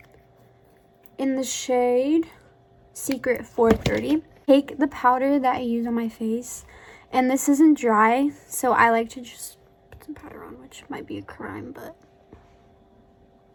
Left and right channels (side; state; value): both; identical; correlation 1.00